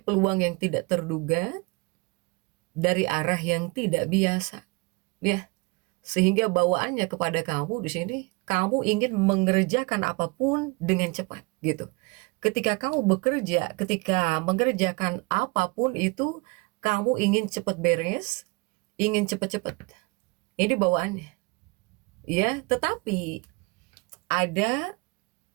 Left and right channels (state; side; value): quieter; left; 27.7 dB